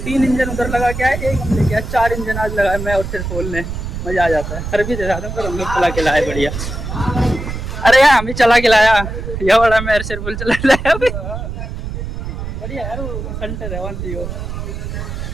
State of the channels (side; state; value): right; noise; rumble, 6 dB below the sound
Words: इंजन उधर लगा के आए, एक हम लेके आए, 4 इंजन आज लगाए मैं और फिर खोलने। मजा आ जाता है। सर्विस दे रहा पर हम लोग चला के लाए बढ़िया। अरे यार हम भी चला के लाया, यह बड़ा मैं सिर्फ चला लाया अभी बढ़िया यार। वो सेंटर है 1